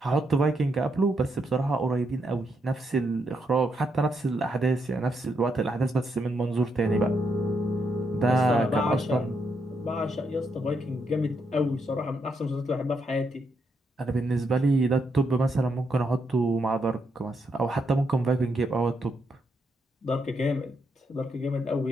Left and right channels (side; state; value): both; normal; correlation 0.79